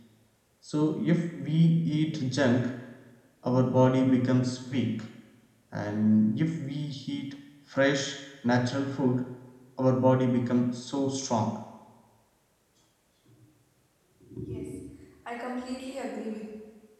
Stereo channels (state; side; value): identical; both; correlation 1.00